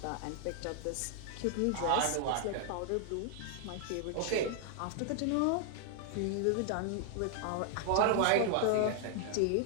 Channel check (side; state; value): both; different; correlation 0.00